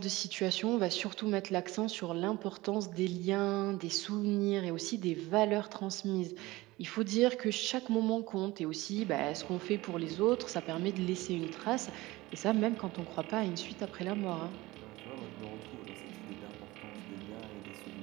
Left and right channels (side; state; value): left; quieter; 19.9 dB